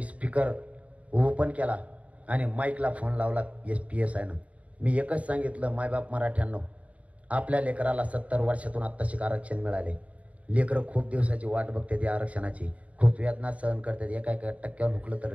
स्पीकर ओपन केला आणि माईकला फोन लावला PSI नं. मी एकच सांगितलं, मायबाप मराठ्यांनो, आपल्या लेकराला 70 वर्षातून आत्ताशी आरक्षण मिळाले. लेकरं खूप दिवसाची वाट बघते त्या आरक्षणाची, खूप वेदना सहन करतात. एका टक्क्यावर हुकलं तर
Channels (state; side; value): late; left; 0.067 ms